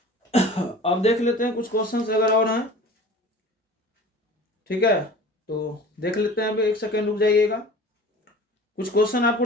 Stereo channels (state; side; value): normal; both; correlation 0.41